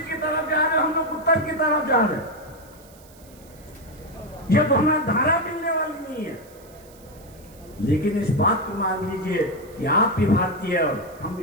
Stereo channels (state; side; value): noise; right; hiss, 25 dB below the sound